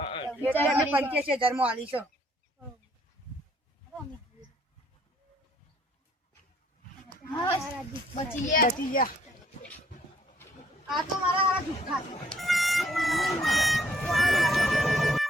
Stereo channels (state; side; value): normal; both; correlation 0.64